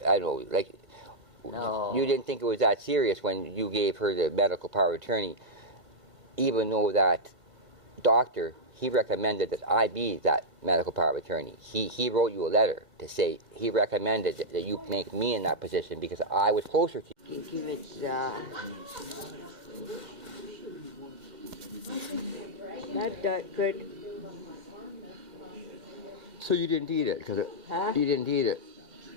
I don't know, like, No. you didn't think it was that serious when you gave her the medical power of attorney, even though that doctor, he recommended that I be that medical power of attorney. He wrote you a letter to say he recommended that you make me in that position because I was closer to you. Give it not that good. So you didn't eat it? You didn't eat it.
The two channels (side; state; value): left; late; 2.1 ms